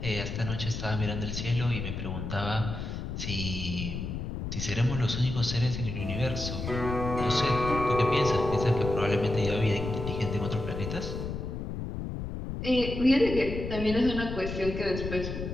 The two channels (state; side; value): noise; left; rumble, 5 dB below the sound